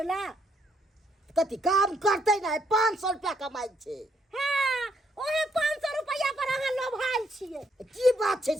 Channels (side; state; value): both; normal; correlation 0.73